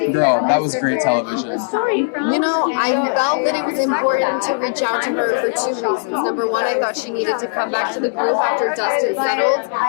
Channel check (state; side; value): silent; right; 67 dB below the other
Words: girl, that was great television. You know, I felt that it was important to reach out to her for two reasons. Number one, I thought she needed to come back to the group after dust had settled,